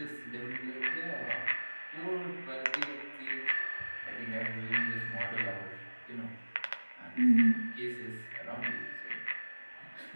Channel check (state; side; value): inverted; both; correlation -1.00